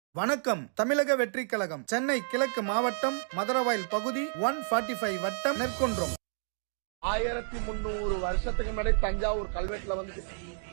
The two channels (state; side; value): silent; left; digital silence